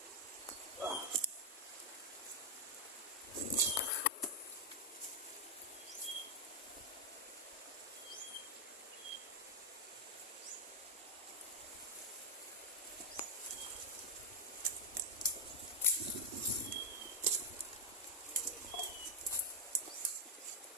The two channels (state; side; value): normal; both; correlation 0.01